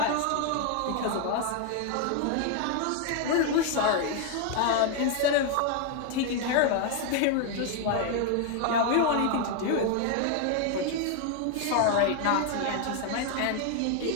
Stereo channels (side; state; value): both; different; correlation 0.01